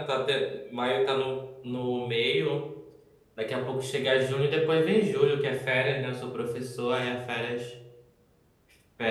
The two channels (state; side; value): identical; both; correlation 1.00